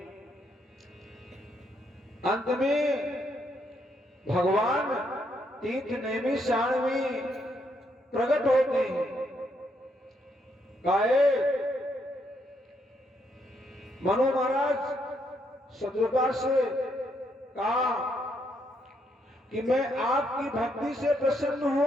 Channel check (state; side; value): normal; both; correlation 0.75